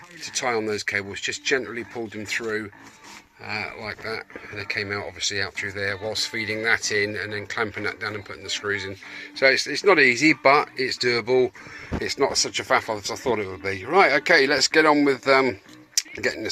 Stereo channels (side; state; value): both; identical; correlation 1.00